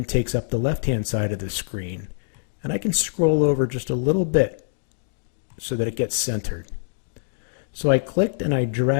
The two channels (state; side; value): silent; right; digital silence